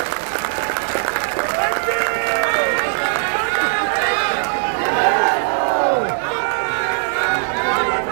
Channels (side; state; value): left; silent; digital silence